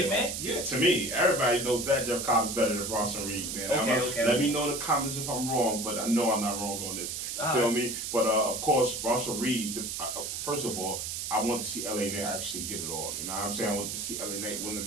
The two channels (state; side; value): noise; right; hiss, 4 dB below the sound